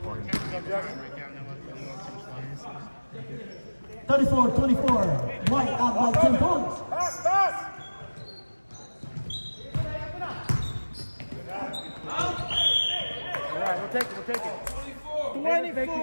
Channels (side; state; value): both; inverted; correlation -1.00